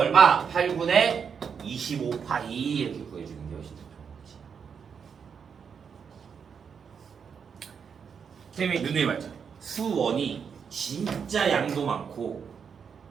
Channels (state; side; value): quieter; left; 6.7 dB